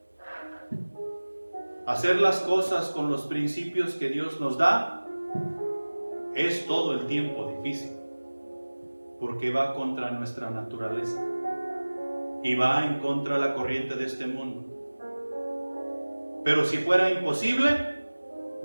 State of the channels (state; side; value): inverted; both; correlation -1.00